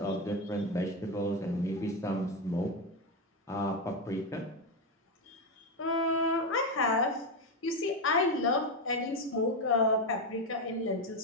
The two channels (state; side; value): normal; both; correlation 0.10